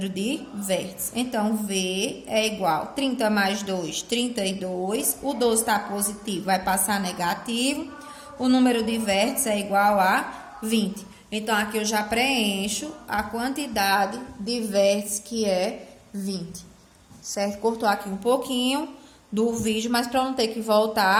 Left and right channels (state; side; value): identical; both; correlation 1.00